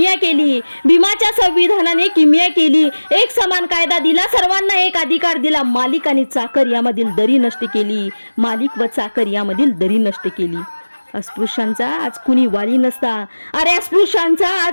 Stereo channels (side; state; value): both; inverted; correlation -1.00